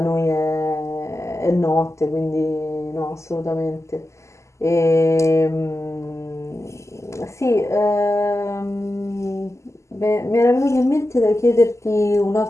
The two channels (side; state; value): right; late; 0.14 ms